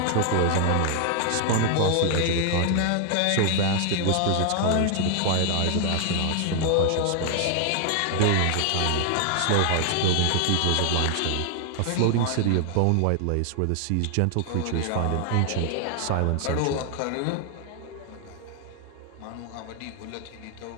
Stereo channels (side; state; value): both; different; correlation 0.00